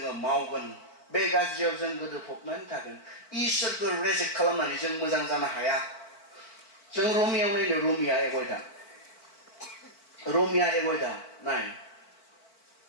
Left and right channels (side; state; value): right; late; 4.5 ms